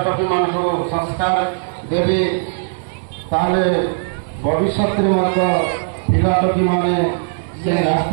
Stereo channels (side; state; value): left; silent; 67 dB below the other